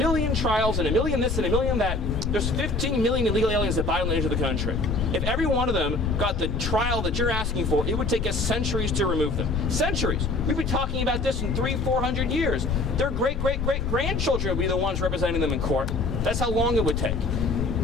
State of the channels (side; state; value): left; noise; rumble, 3 dB below the sound